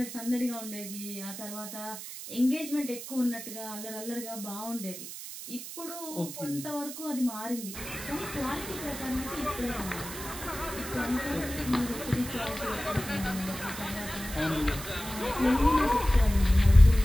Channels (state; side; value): noise; right; hiss, 10 dB below the sound